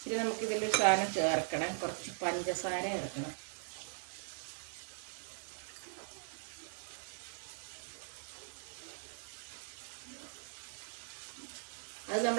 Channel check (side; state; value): left; silent; digital silence